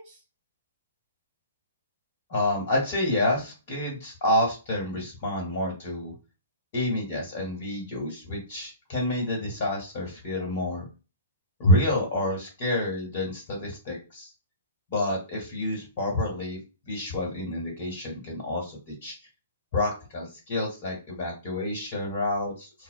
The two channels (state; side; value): inverted; both; correlation -0.39